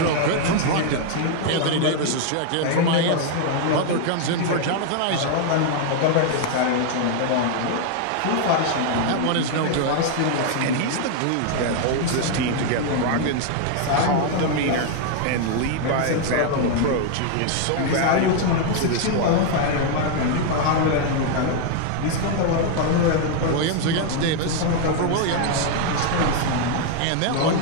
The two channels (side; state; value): both; different; correlation 0.00